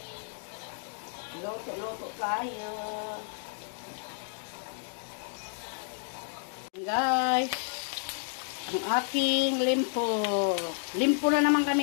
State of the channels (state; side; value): silent; right; digital silence